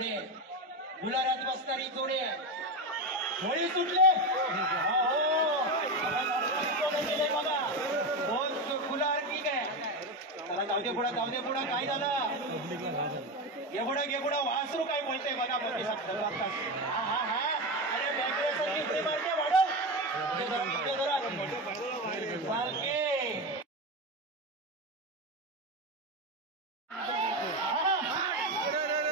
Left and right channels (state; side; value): normal; both; correlation 0.17